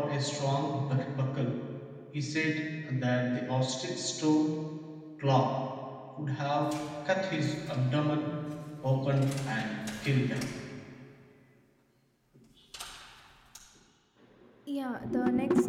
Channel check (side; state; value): both; identical; correlation 1.00